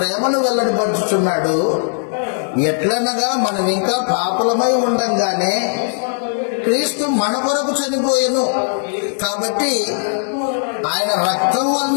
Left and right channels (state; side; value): silent; right; digital silence